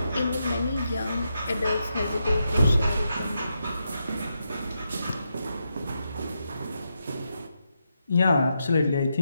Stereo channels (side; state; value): both; inverted; correlation -0.84